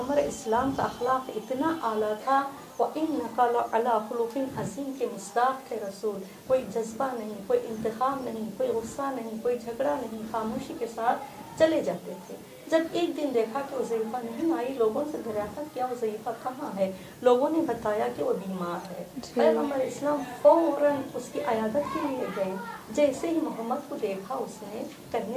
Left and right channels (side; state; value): both; identical; correlation 1.00